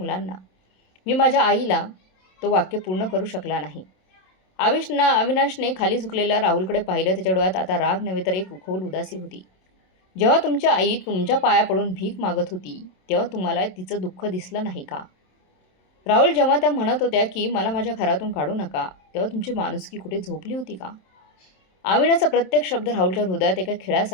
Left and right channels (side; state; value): right; late; 27 ms